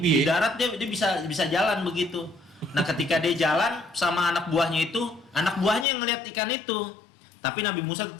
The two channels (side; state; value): right; drops out; at 5.9 s